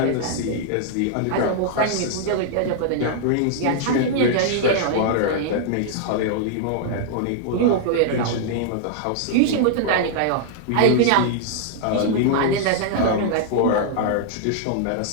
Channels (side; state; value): both; different; correlation -0.01